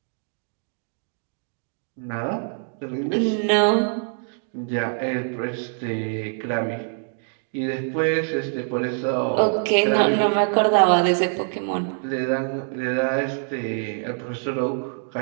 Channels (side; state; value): left; silent; digital silence